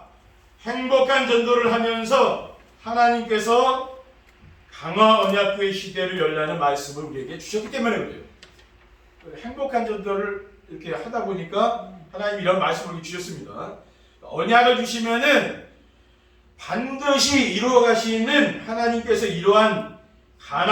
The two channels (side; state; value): both; identical; correlation 1.00